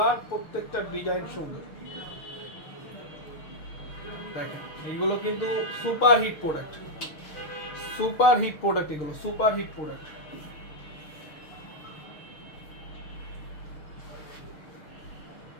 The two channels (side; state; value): right; late; 6.4 ms